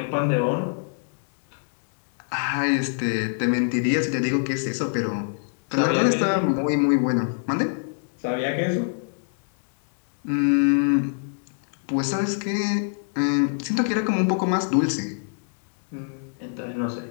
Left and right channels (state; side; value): silent; right; digital silence